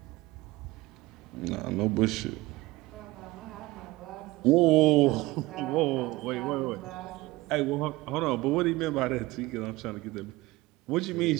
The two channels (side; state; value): left; quieter; 20.0 dB